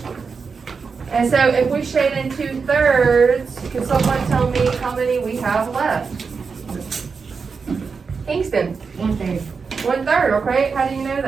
And so if we shade in 2/3, can someone tell me how many we have left? Kingston, 1/3. 1/3, okay, how do you know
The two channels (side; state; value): left; quieter; 5.2 dB